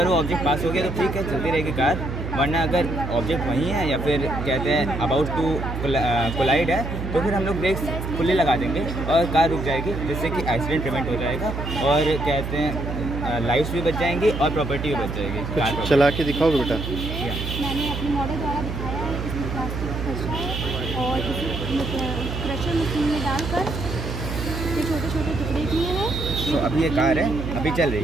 वो ऑब्जेक्ट पास हो गया तो ठीक है, चलती रहेगी कार. वरना अगर ऑब्जेक्ट वहीं है या फिर कहते हैं अबाउट टू कोलाइड है तो फिर हम लोग ब्रेक्स खुले लगा देंगे और कार रुक जाएगी, जिससे कि एक्सीडेंट प्रिवेंट हो जाएगा और कहते हैं लाइफ्स भी बच जाएंगी और प्रॉपर्टी भी बच जाएगी. चला के दिखाओ बेटा. मैंने अपने मॉडल द्वारा दिखाया है. इसमें प्लास्टिक का कचरा है और इसे क्रशर मशीन में डालकर ये छोटे छोटे टुकड़े किए हैं. तो अभी ये कार है, अभी चल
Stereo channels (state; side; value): noise; right; hum, 5 dB below the sound